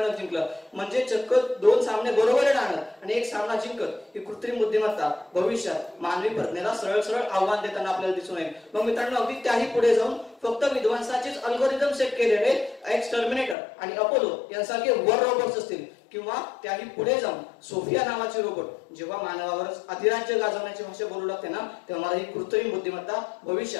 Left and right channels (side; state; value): right; drops out; at 13.6 s